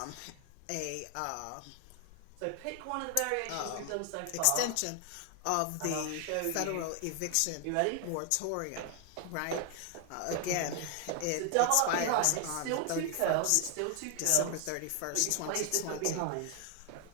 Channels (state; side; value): different; both; correlation 0.00